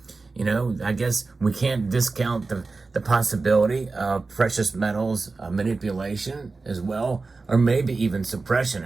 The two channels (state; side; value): quieter; left; 3.9 dB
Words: You know, I guess we can't discount the possibility of precious metals manipulation as well, or maybe even suppression.